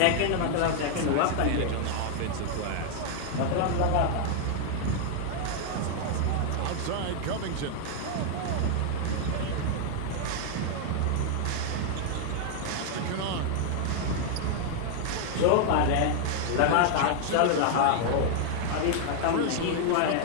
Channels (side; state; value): both; different; correlation 0.00